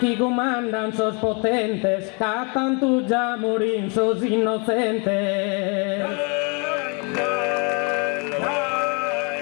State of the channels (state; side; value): quieter; right; 34.3 dB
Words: comandan sos potentes, ca tanto già morin sos innocentes.